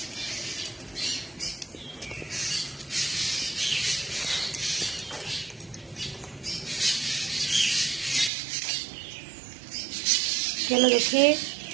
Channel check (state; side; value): drops out; left; at 8.3 s